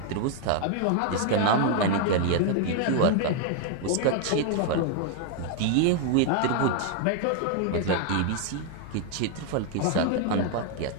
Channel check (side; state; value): both; different; correlation 0.00